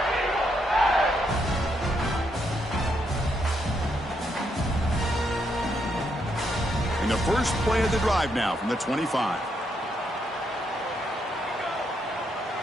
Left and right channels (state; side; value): normal; both; correlation 0.78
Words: The first play of the drive now from the 25.